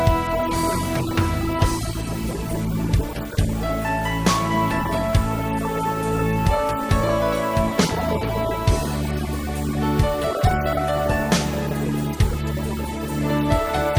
선생님들한테 쌍방향 수업을 이렇게 한번 해봅시다라고 이야기를 했고 처음에는 힘들었지만 지금은 대부분의 선생님들이 학생과 함께 원래 시간표대로 원격 수업이 있으면 쌍방향 수업으로 진행하고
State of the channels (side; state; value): both; identical; correlation 1.00